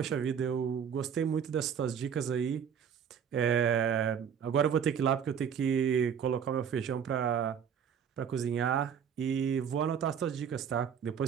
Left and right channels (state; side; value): quieter; left; 7.7 dB